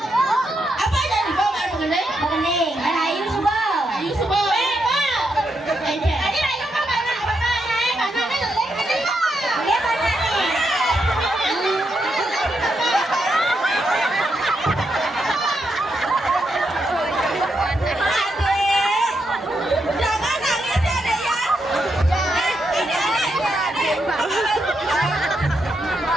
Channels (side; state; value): both; normal; correlation 0.81